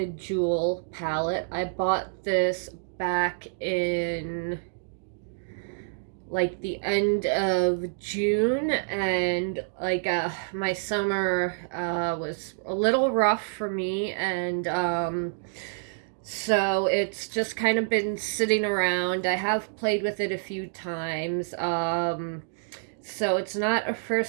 Jewel palette. I bought this back in like the end of June, and my summer was a little rough for me, and so it's just kind of been sitting around. I have played with it a few times. So it's not a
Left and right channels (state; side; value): silent; left; digital silence